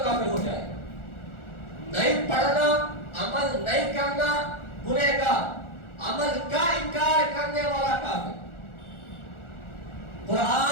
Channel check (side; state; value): right; late; 1.4 ms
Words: کافر ہو جائے. نہیں پڑھنا, عمل نہیں کرنا گنہگار, عمل کا انکار کرنے والا کافر.